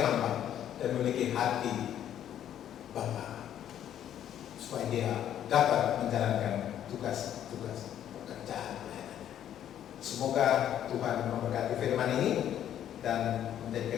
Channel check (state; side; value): quieter; right; 10.6 dB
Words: hamba, dan memiliki hati Bapa, supaya dia dapat menjalankan tugas-tugas pekerjaan. Semoga Tuhan memberkati firman ini dan